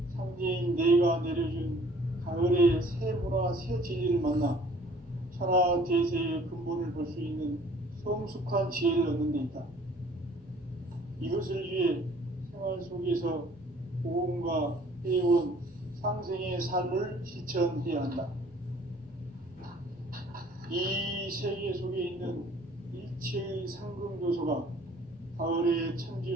상제인 내가 내려준 가을의 새 문화, 새 진리를 만나 천하 대세의 근본을 볼 수 있는 성숙한 지혜를 얻는 데 있다. 이것을 위해 생활 속에서 고음과 회원, 상생의 삶을 실천해야 한다. 이 세계 속에 있는 일체의 상금 요소가 가을의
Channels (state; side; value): normal; both; correlation 0.55